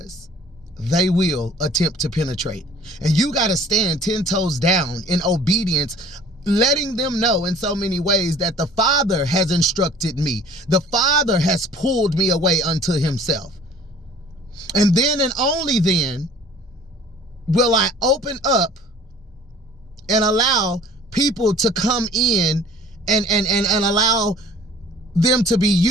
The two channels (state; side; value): normal; both; correlation 0.50